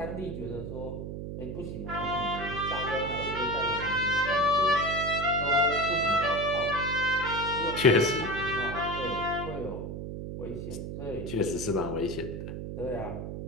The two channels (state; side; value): noise; right; hum, 7 dB below the sound